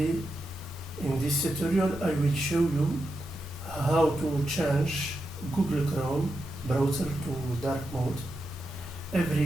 in this tutorial I will show you how to change Google Chrome browser to dark mode.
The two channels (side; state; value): both; normal; correlation 0.87